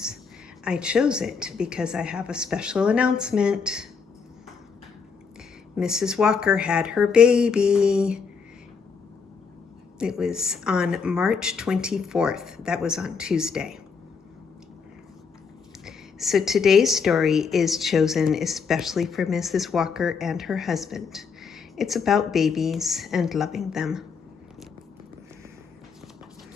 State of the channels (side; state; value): right; quieter; 5.6 dB